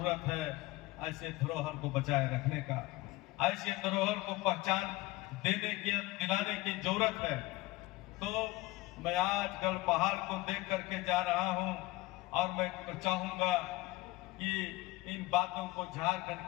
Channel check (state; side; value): quieter; right; 19.7 dB